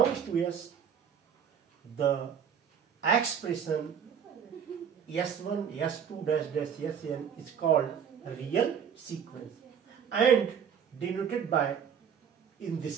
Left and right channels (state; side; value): quieter; left; 7.8 dB